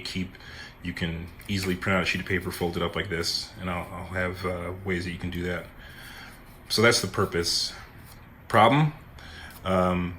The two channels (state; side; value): identical; both; correlation 1.00